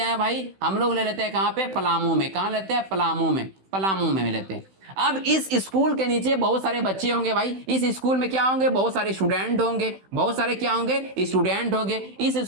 भाई, हम लोग ले लेते हैं कहाँ पे? पलामू में। कहाँ लेते हैं? पलामू में, पलामू में लेते हैं। अब इस स्कूल के नीचे बहुत सारे बच्चे होंगे भाई, इस स्कूल में क्या होंगे? बहुत सारे स्टूडेंट होंगे, बहुत सारे क्या होंगे? स्टूडेंट होंगे। इस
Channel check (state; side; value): late; left; 16 ms